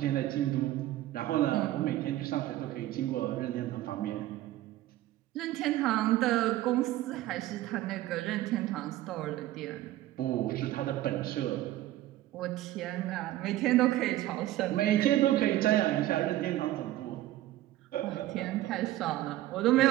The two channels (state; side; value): quieter; left; 15.0 dB